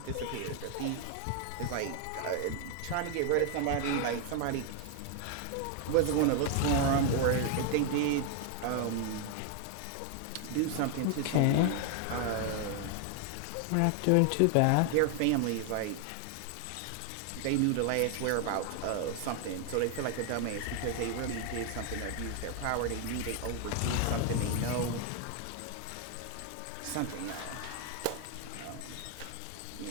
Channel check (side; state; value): both; different; correlation 0.00